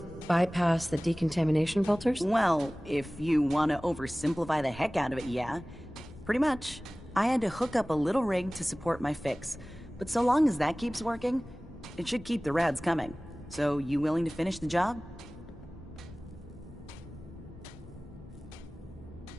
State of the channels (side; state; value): both; normal; correlation 0.98